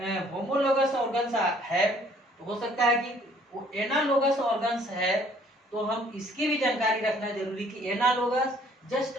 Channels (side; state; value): both; normal; correlation 0.60